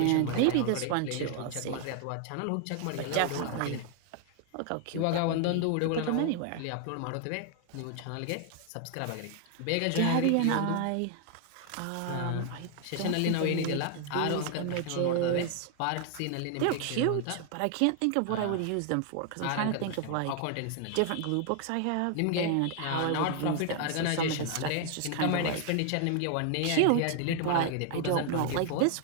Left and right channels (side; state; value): both; different; correlation 0.00